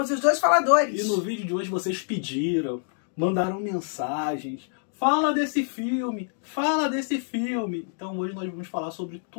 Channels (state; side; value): silent; right; digital silence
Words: os dois faladores. E no vídeo de hoje vocês pediram, mandaram mensagens. Fala desse filme, fala desse filme. Então hoje nós vamos falar sobre